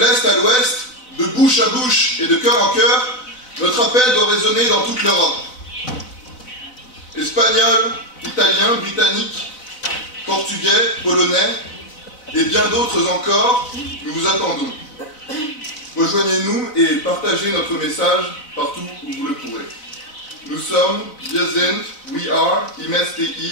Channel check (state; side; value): late; right; 4.0 ms